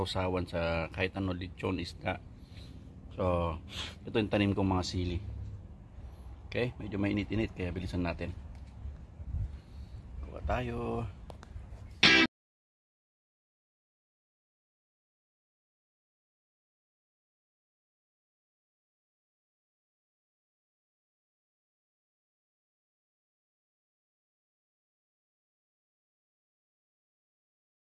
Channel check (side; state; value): both; identical; correlation 1.00